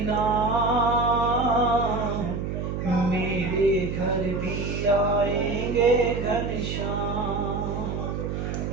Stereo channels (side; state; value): right; noise; hum, 3 dB below the sound